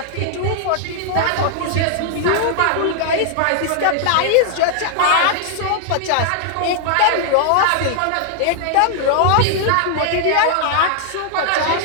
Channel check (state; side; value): different; both; correlation 0.00